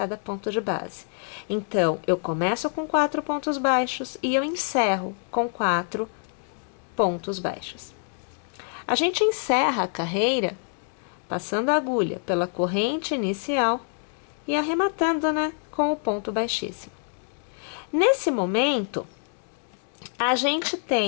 ponto de base. Então, eu começo com 4 pontos baixos e eu encerro com 4 pontos baixos. A gente encerra a carreira passando a agulha pela corrente inicial e arrematando, né, com o ponto baixíssimo. Nesse momento, a gente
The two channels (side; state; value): right; silent; 55 dB below the other